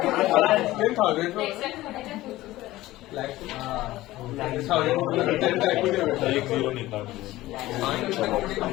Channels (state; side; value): quieter; right; 17.0 dB